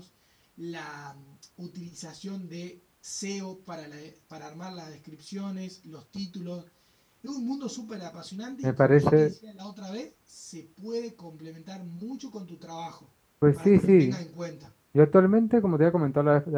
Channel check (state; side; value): identical; both; correlation 1.00